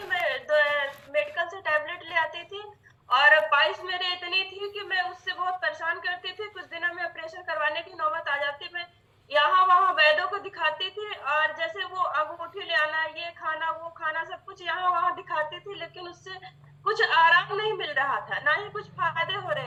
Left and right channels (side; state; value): both; identical; correlation 1.00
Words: मैं मेडिकल से टैबलेट ले आती थी और पाइल्स मेरे इतनी थी कि मैं उससे बहुत परेशान करती थी। कुछ दिनों में ऑपरेशन करवाने की नौबत आ जाती। मैं यहाँ वहाँ वैद्यों को दिखाती थी और जैसे वो अंगूठी ले आना, ये खाना वो खाना, सब कुछ यहाँ वहाँ दिखाती थी, लेकिन उससे कुछ आराम नहीं मिल रहा था, ना ही कुछ फायदे हो